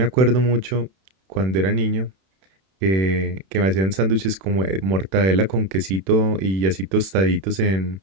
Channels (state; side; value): late; left; 31 ms